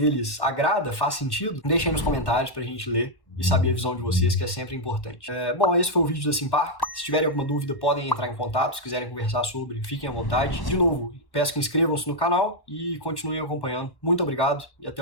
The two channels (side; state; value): right; late; 1.1 ms